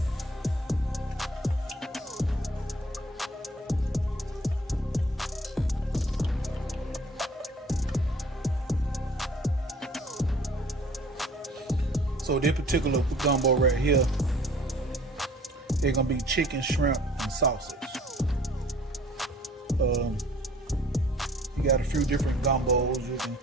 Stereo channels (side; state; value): both; normal; correlation 0.53